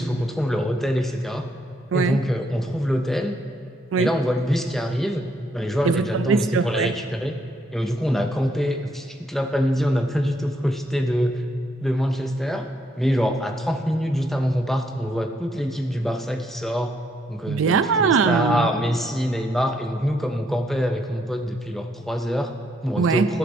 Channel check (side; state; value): both; normal; correlation 0.73